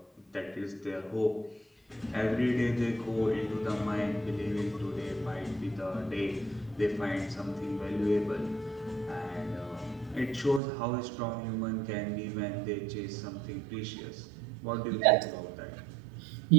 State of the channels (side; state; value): left; drops out; at 10.6 s